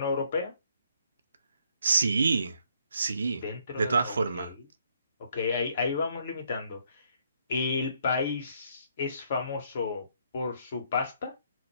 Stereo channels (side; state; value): both; inverted; correlation -0.70